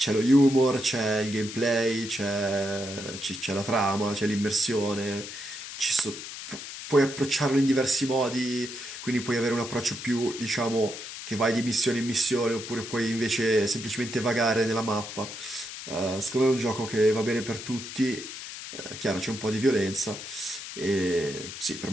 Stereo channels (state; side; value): noise; left; hiss, 10 dB below the sound